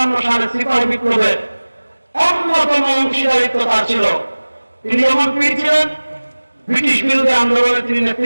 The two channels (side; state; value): both; inverted; correlation -1.00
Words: সালে সিপাহী বিপ্লবে অন্যতম অংশীদারিত্ব তার ছিল। তিনি যেমন পীর ছিলেন, ব্রিটিশ বিরোধী আন্দোলনে তিনি